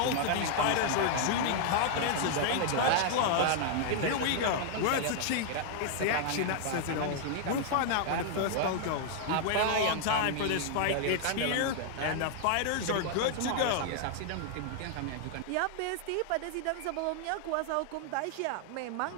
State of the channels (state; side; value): different; both; correlation 0.00